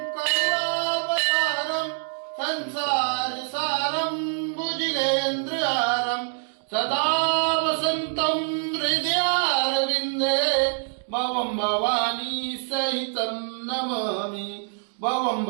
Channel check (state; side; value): silent; left; digital silence